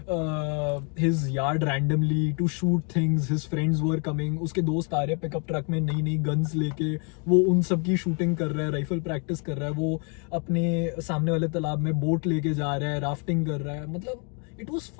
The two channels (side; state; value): right; quieter; 38.0 dB